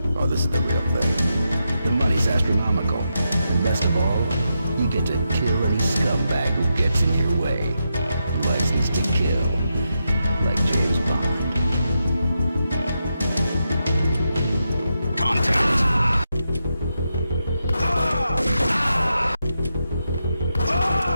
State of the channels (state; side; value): inverted; both; correlation -0.86